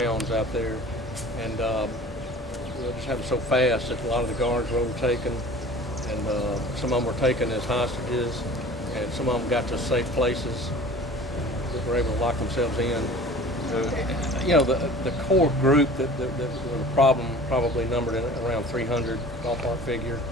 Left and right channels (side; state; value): both; normal; correlation 0.43